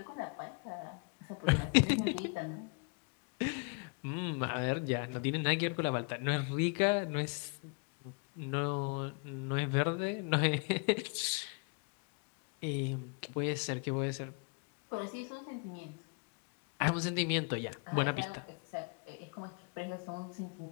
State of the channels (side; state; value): right; quieter; 36.9 dB